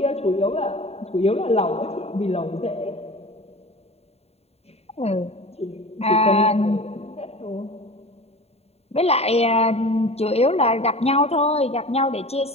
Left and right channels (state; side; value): late; right; 0.30 ms